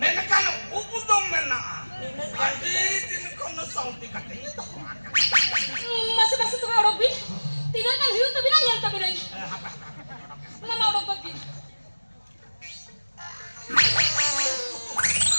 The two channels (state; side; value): inverted; both; correlation -1.00